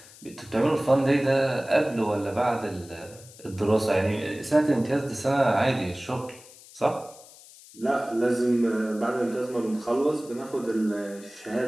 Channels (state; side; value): noise; left; hiss, 21 dB below the sound